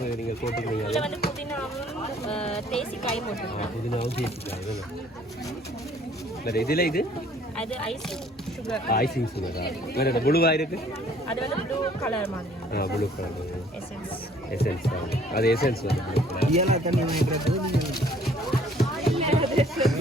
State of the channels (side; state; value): both; normal; correlation 0.58